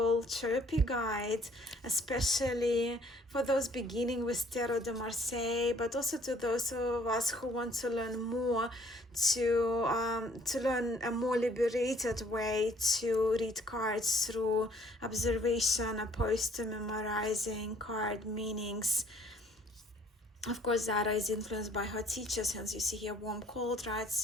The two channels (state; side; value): normal; both; correlation 0.60